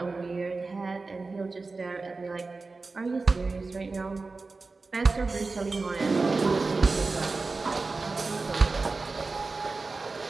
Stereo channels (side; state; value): left; quieter; 3.8 dB